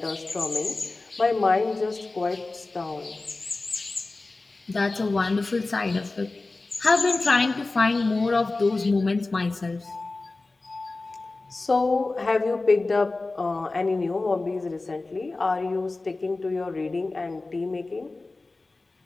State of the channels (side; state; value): right; quieter; 3.3 dB